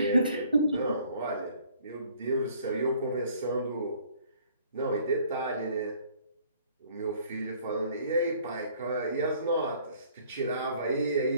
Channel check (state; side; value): inverted; both; correlation -0.58